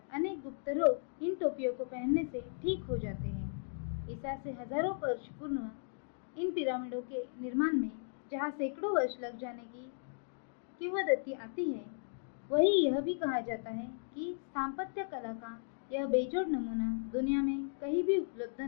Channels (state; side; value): silent; right; digital silence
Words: अनेक गुप्त रोग इन टोपियों को पहनने से ठीक हो जाते हैं। ईसा से हजारों वर्ष पूर्व इन पिरामिडों के निर्माण में जहाँ सैकड़ों वर्ष लग जाने की किंवदंती आती है, वही यह भी कहा जाता है कि स्थापत्य कला का यह बेजोड़ नमूना दुनिया में कहीं भी उपलब्ध